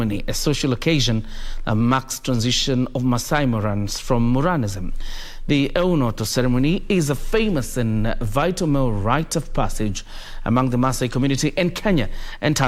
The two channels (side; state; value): both; identical; correlation 1.00